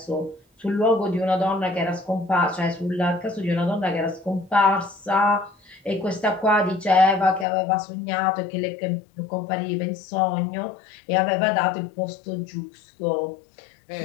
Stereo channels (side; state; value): right; drops out; at 7.5 s